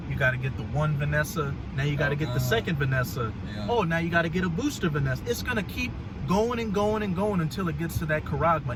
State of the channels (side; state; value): both; identical; correlation 1.00